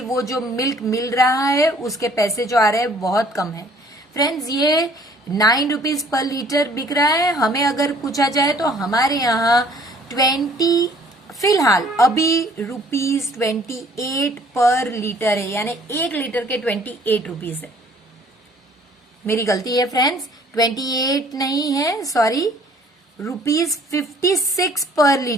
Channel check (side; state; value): both; normal; correlation 0.57